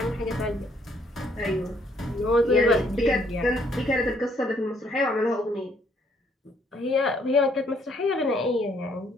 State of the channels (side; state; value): both; normal; correlation 0.68